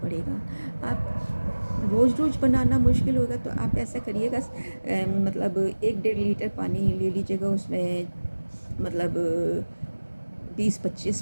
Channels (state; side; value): inverted; both; correlation -1.00